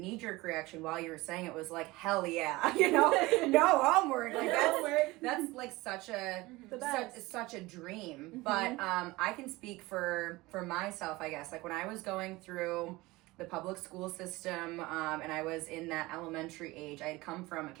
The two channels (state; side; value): quieter; left; 20.8 dB